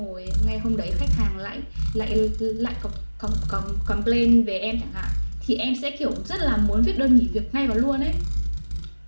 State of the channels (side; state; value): both; inverted; correlation -1.00